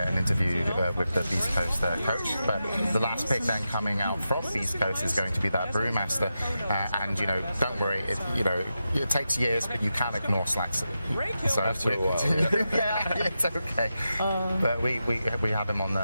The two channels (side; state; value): both; inverted; correlation -0.89